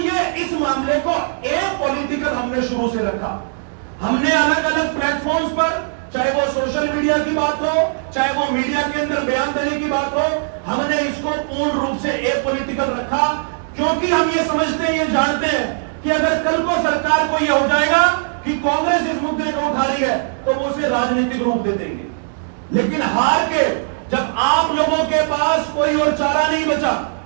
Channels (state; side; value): silent; left; digital silence